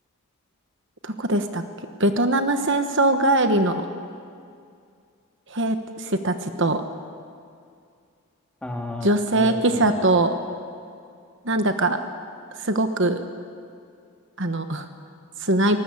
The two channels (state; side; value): normal; both; correlation 0.05